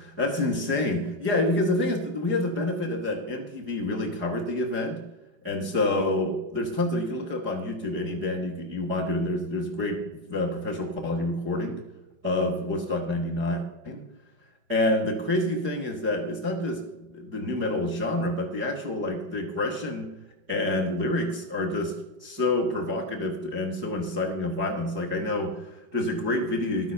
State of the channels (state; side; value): late; left; 4.8 ms